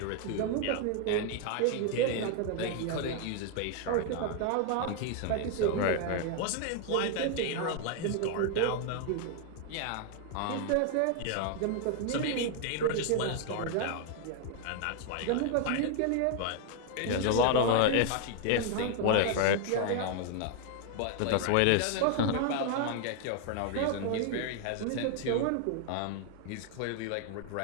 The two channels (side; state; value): both; different; correlation 0.00